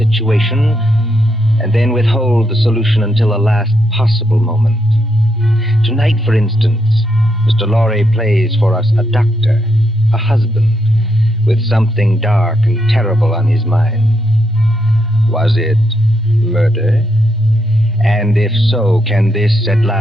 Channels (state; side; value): normal; both; correlation 0.79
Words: and then withhold the solution until the last possible moment. Tonight, for instance, Mr. Lorre plays for us a doctor, a husband, with something dark and terrible on his mind. Was it murder? And if so, can this at